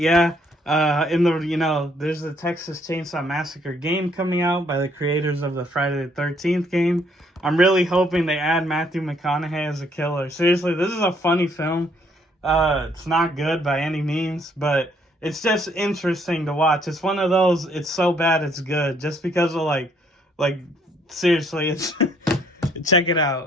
there's the Texas Chainsaw Massacre game coming out by the creators of the Friday the 13th game. I'm really hoping they add Matthew McConaughey as a killer. Seriously, this is a funny film. It's not good by any means, but it's just interesting to watch. It's one of those, it's so bad it's good, just because of like seriously, it's check it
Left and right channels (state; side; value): normal; both; correlation 0.66